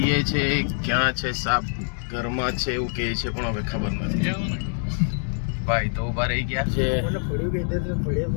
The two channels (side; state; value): right; silent; digital silence